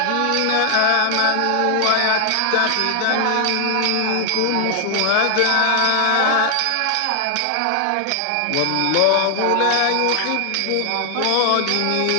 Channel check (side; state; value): both; different; correlation 0.00